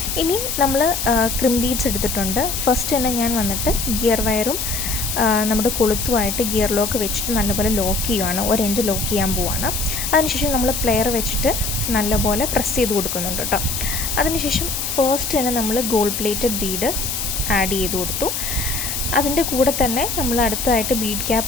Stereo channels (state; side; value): noise; left; hiss, 3 dB below the sound